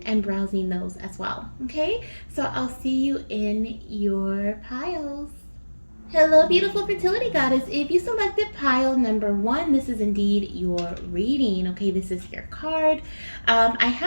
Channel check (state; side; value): inverted; both; correlation -1.00